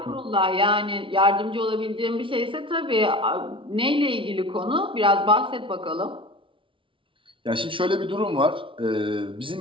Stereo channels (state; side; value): late; left; 0.25 ms